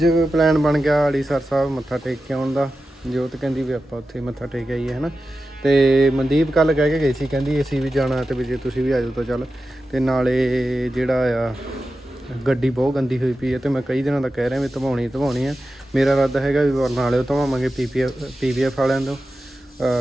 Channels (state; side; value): normal; both; correlation 0.92